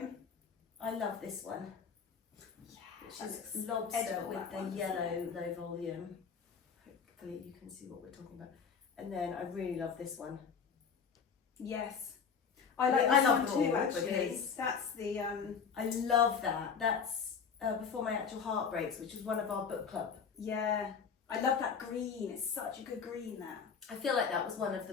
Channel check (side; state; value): right; quieter; 6.3 dB